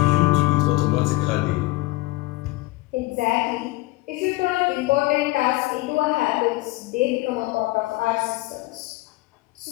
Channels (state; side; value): quieter; right; 19.8 dB